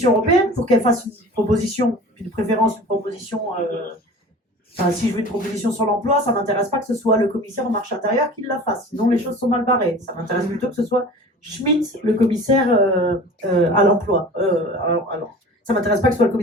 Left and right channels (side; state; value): both; normal; correlation 0.40